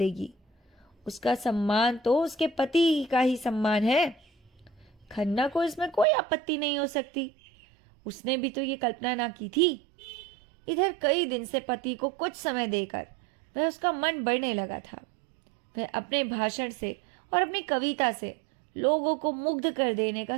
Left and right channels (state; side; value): drops out; left; at 6.1 s